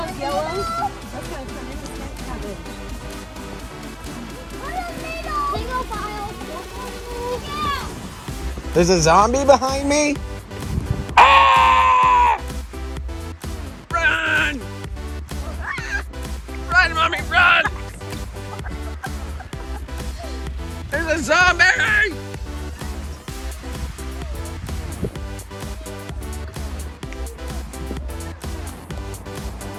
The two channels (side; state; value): both; identical; correlation 1.00